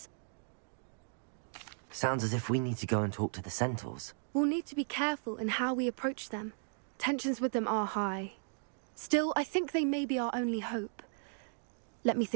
Sounds as if we need to go and talk to the centaurs. We'll need to be careful in how we approach them. Tensions with them are high. Still, I think they may be our only hope. Let me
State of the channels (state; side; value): silent; left; digital silence